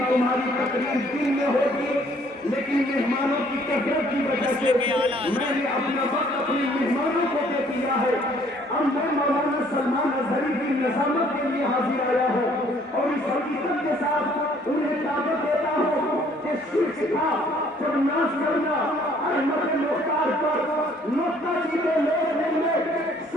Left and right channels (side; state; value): both; normal; correlation 0.61